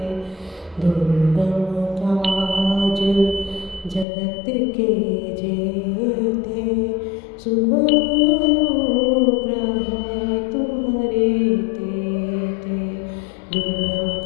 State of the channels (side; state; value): right; drops out; at 4.0 s